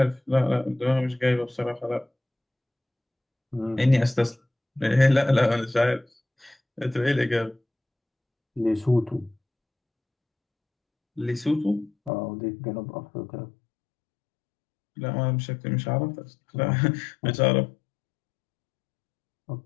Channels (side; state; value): right; drops out; at 12.1 s